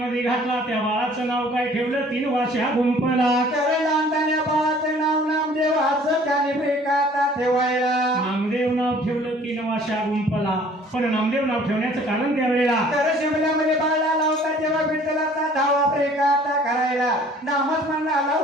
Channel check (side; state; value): both; normal; correlation 0.53